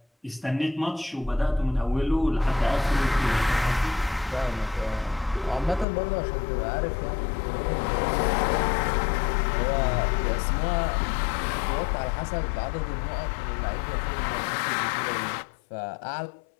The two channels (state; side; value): drops out; right; at 5.9 s